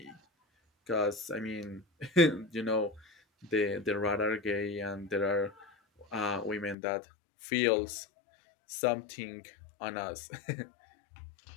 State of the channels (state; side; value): drops out; right; at 6.8 s